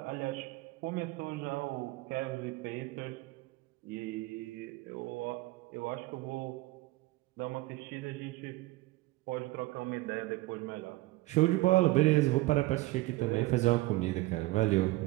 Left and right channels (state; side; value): quieter; left; 19.8 dB